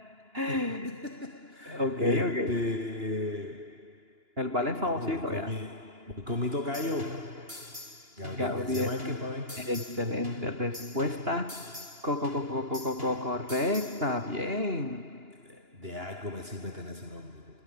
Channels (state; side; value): late; left; 2.9 ms